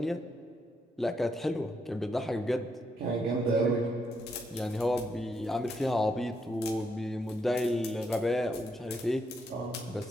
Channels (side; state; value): both; normal; correlation 0.78